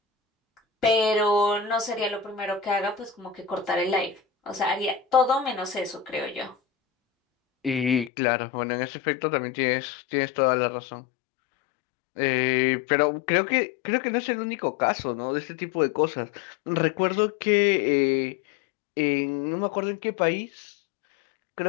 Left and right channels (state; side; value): drops out; right; at 8.1 s